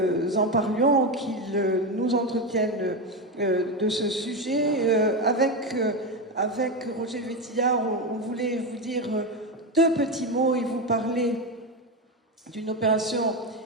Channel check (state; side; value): normal; both; correlation 0.13